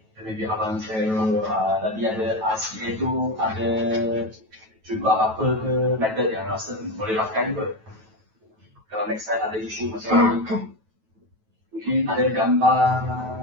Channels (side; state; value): left; late; 9.2 ms